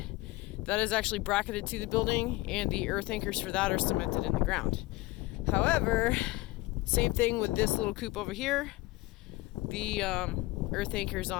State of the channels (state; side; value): quieter; right; 20.0 dB